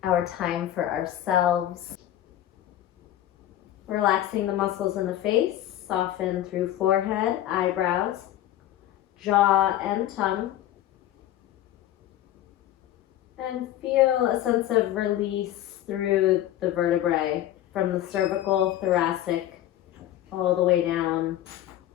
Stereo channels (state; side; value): quieter; right; 12.8 dB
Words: our time for ourselves. Relaxing the muscles in the face, soften through forehead, eyebrows, jaw, and tongue. And feel a sense of release through the vertebrae from the cervical, thoracic, all the way down